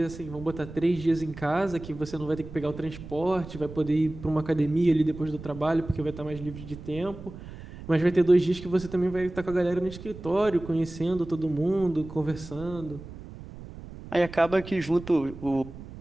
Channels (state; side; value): noise; right; rumble, 14 dB below the sound